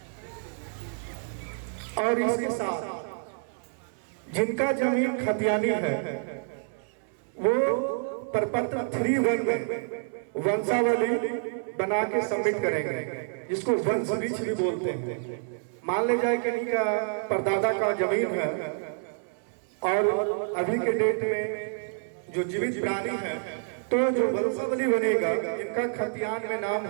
और इसके साथ जिनका जमीन खतियानी है वो प्रपत्र 3-1 में वंशावली बना के सबमिट करेंगे, जिसको वंश वृक्ष भी बोलते हैं। मान ले जाए कि इनका परदादा का जमीन है और अभी के डेट में जो जीवित प्राणी है, तो जो वंशावली बनेगा, इनका खतियान में नाम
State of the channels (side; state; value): left; silent; 59 dB below the other